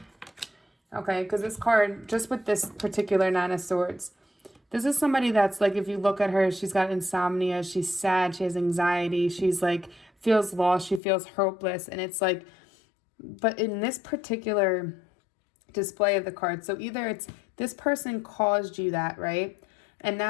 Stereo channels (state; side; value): drops out; right; at 11.0 s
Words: Okay, because this card, just with this particular Nine of Swords, this is somebody that's like, if you look at her, she's got insomnia, she's sad, she has anxiety, she's like, feels lost, she feels hopeless, and it's like, but in this particular display of the card, so either it's this person caused you that, right? And